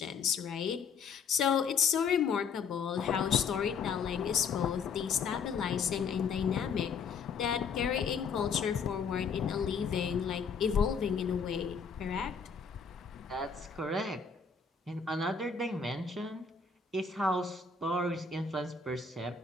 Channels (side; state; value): right; quieter; 5.6 dB